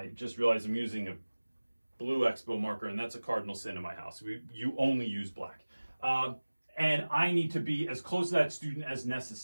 just realized I'm using a blue Expo marker, and that's a cardinal sin in my house. You only use black. And I need to be as close to that student as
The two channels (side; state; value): both; inverted; correlation -1.00